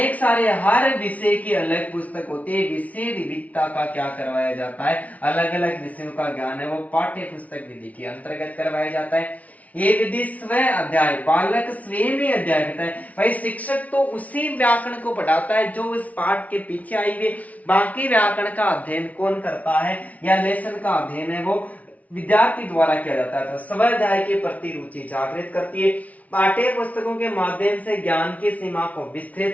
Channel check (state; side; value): late; right; 0.070 ms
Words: सारे हर विषय की अलग पुस्तक होती है, विषय विविधता का क्या करवाया जाता है, अलग अलग विषयों का ज्ञान है वो पाठ्य पुस्तक विधि के अंतर्गत करवाया जाता है। ये विधि स्व अध्याय, बालक स्वयं ही अध्याय करता है। भाई शिक्षक तो उसी व्याकरण को पढ़ाता है जो इस पाठ के पीछे आई हुई, बाकी व्याकरण का अध्ययन कौन करता है या लेसन का अध्ययन है वो विद्यार्थी द्वारा किया जाता है। तो स्व अध्याय के प्रति रुचि जागृत करती है। पाठ्य पुस्तकों के माध्यम से ज्ञान की सीमा को